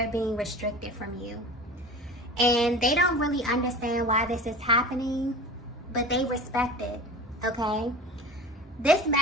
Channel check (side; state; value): both; normal; correlation 0.36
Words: being restricted from you. And they don't really understand why this is happening, but they respect it. Okay, this